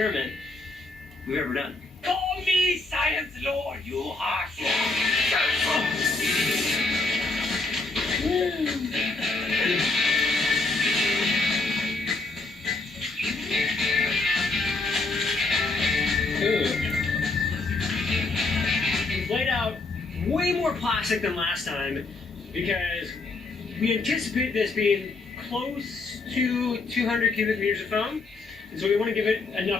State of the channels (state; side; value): quieter; right; 3.4 dB